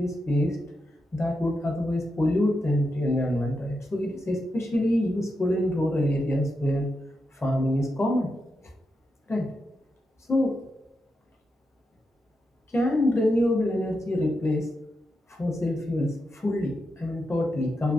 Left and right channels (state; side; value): normal; both; correlation 0.86